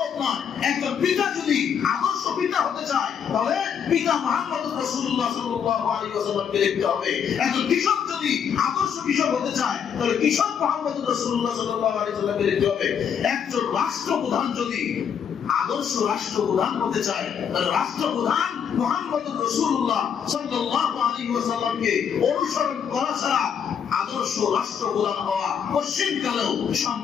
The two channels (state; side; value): quieter; right; 7.7 dB